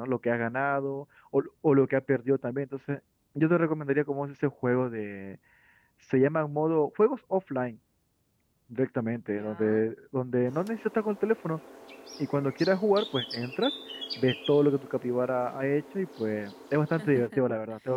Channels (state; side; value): identical; both; correlation 1.00